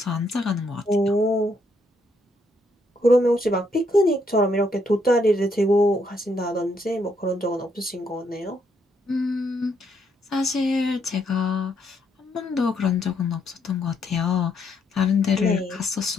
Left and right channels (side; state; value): both; normal; correlation 0.74